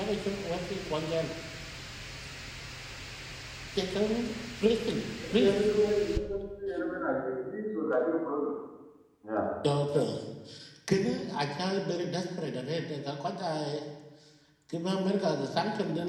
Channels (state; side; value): identical; both; correlation 1.00